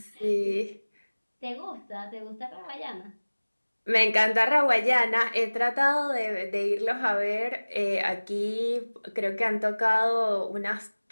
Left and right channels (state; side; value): inverted; both; correlation -1.00